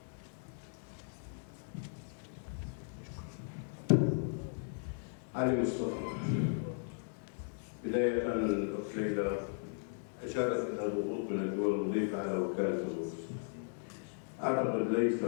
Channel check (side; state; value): right; silent; digital silence